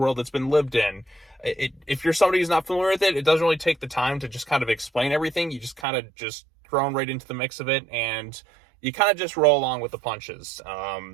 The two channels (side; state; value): left; drops out; at 5.9 s